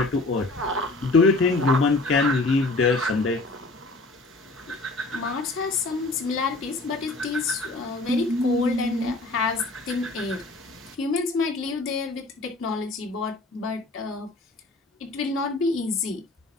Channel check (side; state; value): right; quieter; 3.0 dB